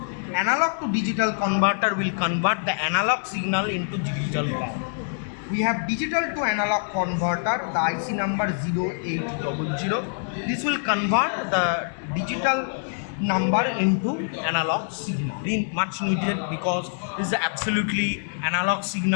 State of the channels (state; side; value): silent; right; digital silence